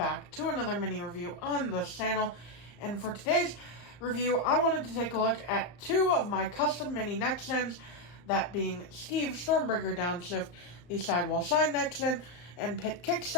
to another mini review on this channel. And for today's review, I wanted to take a look at two of my custom mini neck gens, that being Steve Stormbreaker Downshift, the Sidewall Sign neck gen, and Pit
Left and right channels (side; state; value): right; late; 34 ms